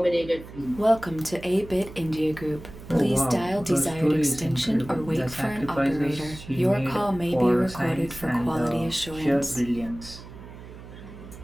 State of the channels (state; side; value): noise; right; hum, 15 dB below the sound